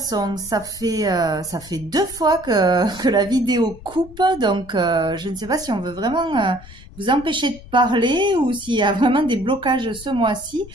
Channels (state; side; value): noise; left; rumble, 19 dB below the sound